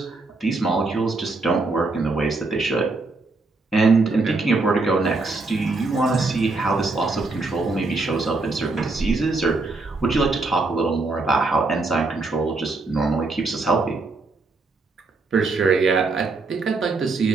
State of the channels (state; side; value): quieter; left; 3.5 dB